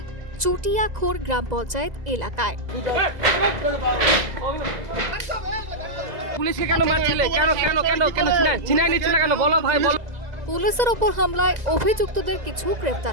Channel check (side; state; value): left; late; 2.0 ms